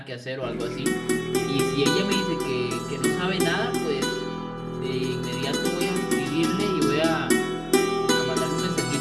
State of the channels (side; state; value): both; identical; correlation 1.00